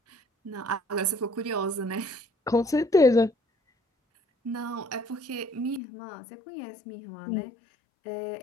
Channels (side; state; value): right; drops out; at 5.8 s